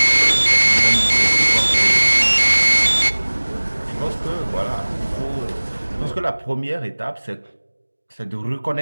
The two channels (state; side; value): inverted; both; correlation -1.00